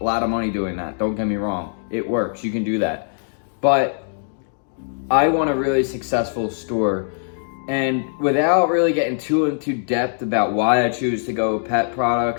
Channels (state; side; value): silent; right; digital silence